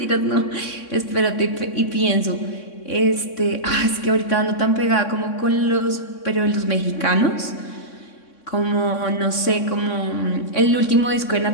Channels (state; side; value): late; right; 3.6 ms